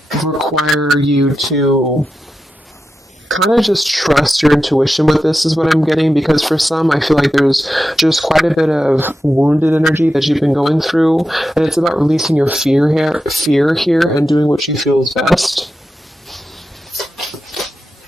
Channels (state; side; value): normal; both; correlation 0.90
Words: require you to kind of just trust your intuition with this, is what I'm getting, because for some, I feel like there's just quite a bit of wounded energy that you've been going through, and it's about releasing your fear here and doing what you feel is best.